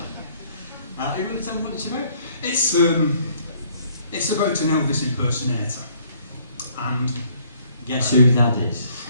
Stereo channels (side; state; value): both; inverted; correlation -0.62